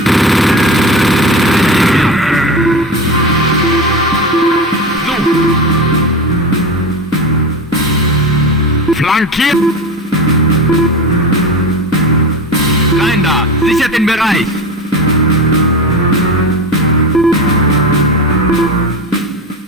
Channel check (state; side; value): normal; both; correlation 0.26